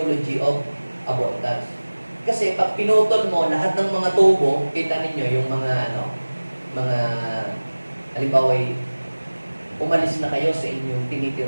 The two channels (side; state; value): both; inverted; correlation -1.00